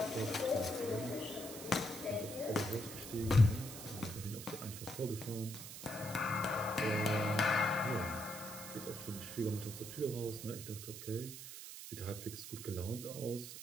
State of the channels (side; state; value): right; noise; hiss, 10 dB below the sound